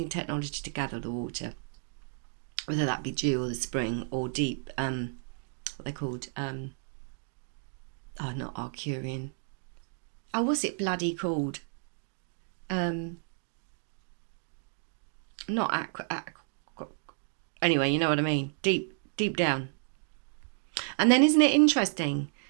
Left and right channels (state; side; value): silent; left; digital silence